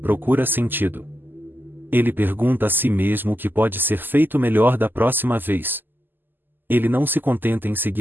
procura sentido. Ele pergunta a si mesmo o que pode ser feito melhor da próxima vez. Ele não se contenta em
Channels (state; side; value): late; left; 0.092 ms